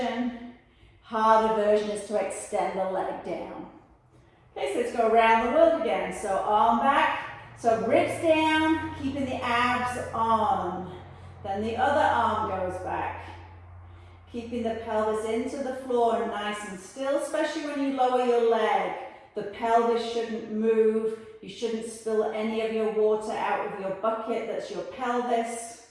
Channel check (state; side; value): identical; both; correlation 1.00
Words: Harder version is to extend the leg down. Okay, so let's go around the world again. So arm back, so ribs down, keeping the abs on. Then the other arm goes back. Keeping the pelvis into the floor nice and still, especially when you lower your leg. The pelvis shouldn't move. You shouldn't spill any of your water out of your bucket. That's your pelvis.